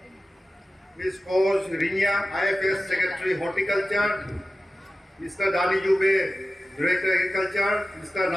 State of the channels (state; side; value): normal; both; correlation 0.94